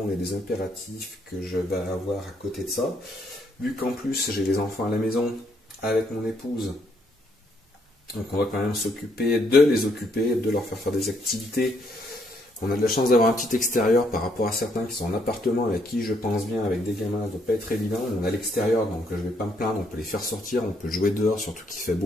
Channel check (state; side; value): normal; both; correlation 0.71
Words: et des impératifs que je vais avoir à côté de ça. Vu qu'en plus j'ai les enfants à la maison avec mon épouse, donc on va quand même s'occuper de les occuper, de leur faire des activités. On a de la chance d'avoir un petit extérieur par rapport à certains qui sont en appartement avec qui je pense bien, avec des gamins, ça ne doit pas être évident. On a l'extérieur, donc je ne vais pas me plaindre, on peut les faire sortir, on peut jouer dehors, surtout qu'il fait